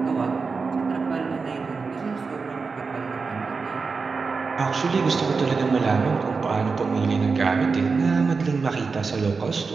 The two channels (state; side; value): quieter; left; 4.7 dB